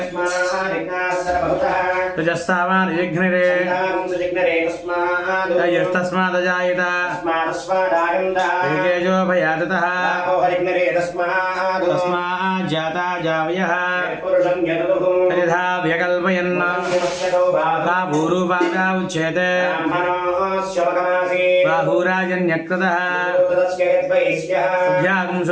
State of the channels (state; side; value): identical; both; correlation 1.00